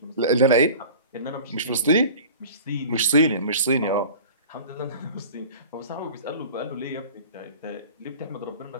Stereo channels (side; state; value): both; inverted; correlation -0.41